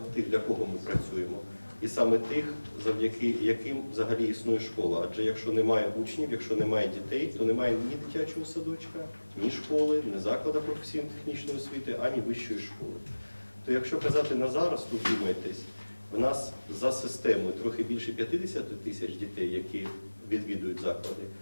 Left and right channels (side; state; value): both; inverted; correlation -1.00